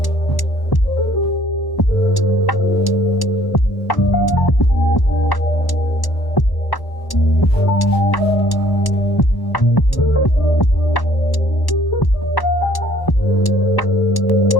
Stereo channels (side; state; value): right; late; 1.1 ms